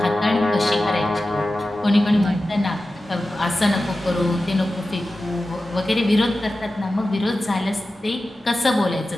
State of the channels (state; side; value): normal; both; correlation 0.94